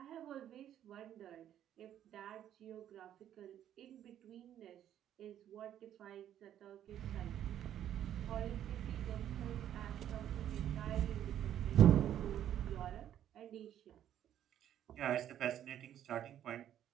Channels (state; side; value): quieter; left; 10.8 dB